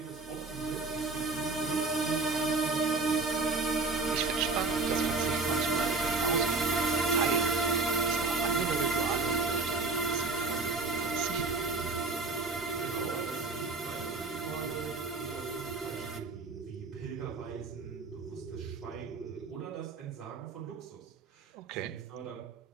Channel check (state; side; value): quieter; left; 3.7 dB